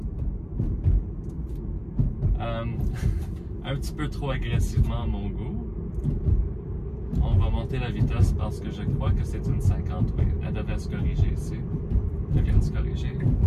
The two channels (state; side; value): identical; both; correlation 1.00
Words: Un petit peu trop agressivement à mon goût. On va monter la vitesse parce que je crois que c'est une 50, oui. Elle devrait se corriger ici. Elle vient de se corriger.